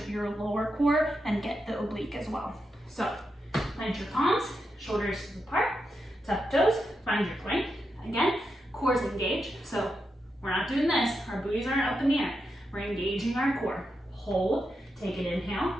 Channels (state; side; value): normal; both; correlation 0.86